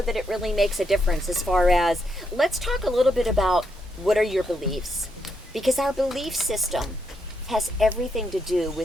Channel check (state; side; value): normal; both; correlation 0.79